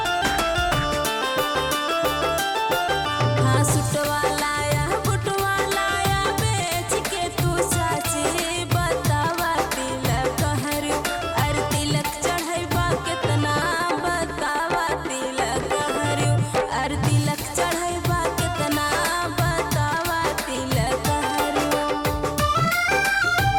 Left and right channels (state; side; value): identical; both; correlation 1.00